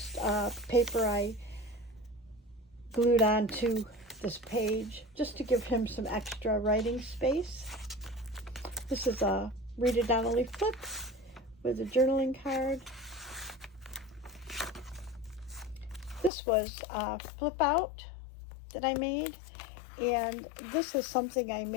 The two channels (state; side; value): drops out; right; at 16.3 s